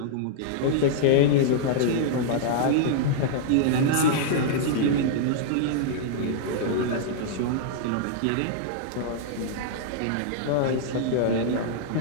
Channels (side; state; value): both; different; correlation -0.01